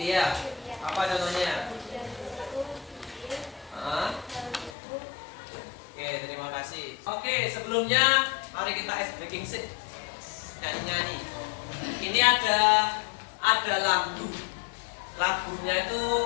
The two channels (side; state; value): right; drops out; at 4.7 s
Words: Apa contohnya? Oke, terima kasih. Oke, sebelumnya mari kita ice breaking sih. Nyanyi-nyanyi. Ini ada lagu. Lagunya itu